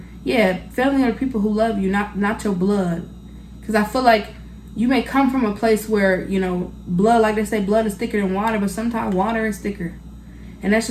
yeah, family are the people who love you, not your blood. Because I feel like you may come from a place where, you know, blood, like they say, blood is thicker than water. But sometimes water is thicker. And that's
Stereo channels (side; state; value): both; identical; correlation 1.00